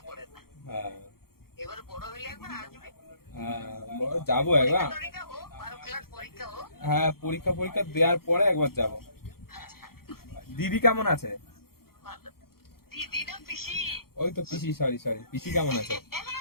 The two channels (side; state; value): right; late; 0.94 ms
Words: হ্যাঁ হ্যাঁ, যাবো একবার। হ্যাঁ, পরীক্ষা পরীক্ষা দেওয়ার পরে একবার যাব। দিদি কেমন আছে? ওই তো পিসি, সরি সরি, পিসি কেমন আছে?